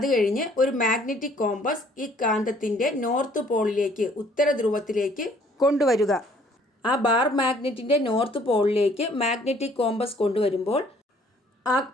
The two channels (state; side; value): normal; both; correlation 0.59